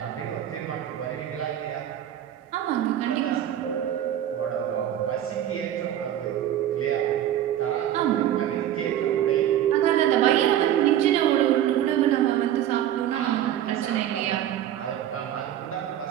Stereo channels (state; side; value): quieter; left; 11.4 dB